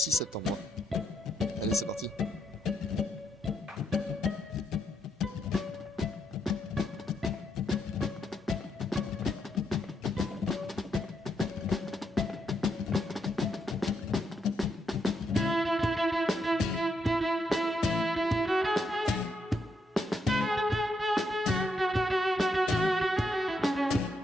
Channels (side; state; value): both; normal; correlation 0.78